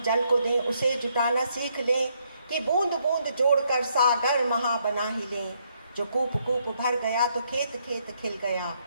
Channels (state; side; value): inverted; both; correlation -0.73